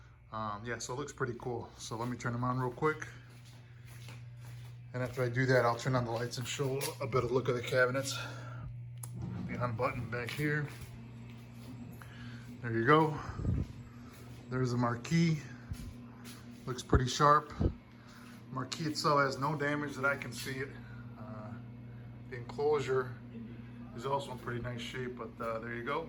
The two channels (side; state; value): both; identical; correlation 1.00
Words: Yeah, so it looks pretty cool. So let me turn them on real quick. And after I do that, I'll turn on the lights and show a better look of the cabinets. The on button back here. There you go. There's the marquee. Looks pretty sharp. Marquee itself has no damage that I can see it. The enclosure is also in pretty nice shape, but there you